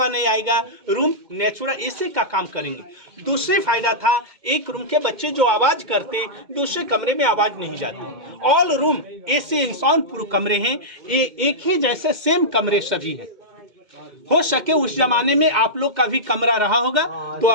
नहीं आएगा। रूम नेचुरल एसी का काम करेंगे। दूसरे फायदा था, एक रूम के बच्चे जो आवाज करते, दूसरे कमरे में आवाज नहीं जाती। ऑल रूम एसी इंसान पूरे कमरे हैं, एक ही जैसे सेम कमरे सभी हैं। हो सके उस जमाने में आप लोग का भी कमरा रहा होगा, तो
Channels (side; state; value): left; late; 2.1 ms